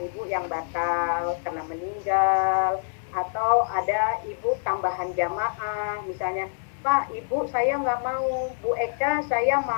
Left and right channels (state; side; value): silent; right; digital silence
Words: ibu yang batal karena meninggal, atau ada ibu tambahan jamaah, misalnya Pak, Ibu saya nggak mau, Bu Eka saya